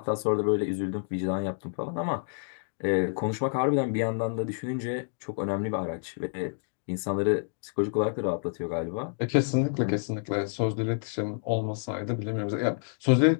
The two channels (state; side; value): silent; right; digital silence